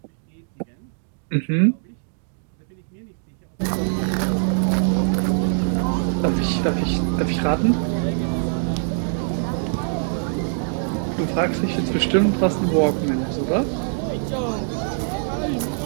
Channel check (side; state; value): left; silent; digital silence